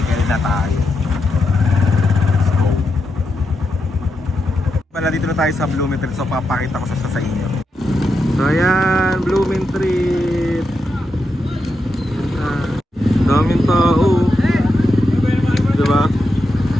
na tayo. Let's go. Pala dito na tayo sa Blooming Treat. So papakita ko sa inyo. So ayan, Blooming Treat. Daming tao. Diba?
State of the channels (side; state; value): both; normal; correlation 0.86